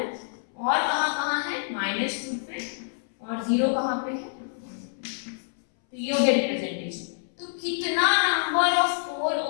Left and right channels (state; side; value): silent; right; 60 dB below the other